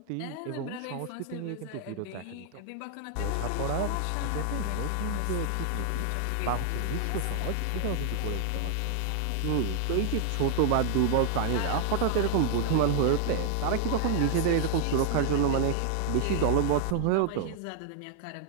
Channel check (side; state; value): both; different; correlation 0.00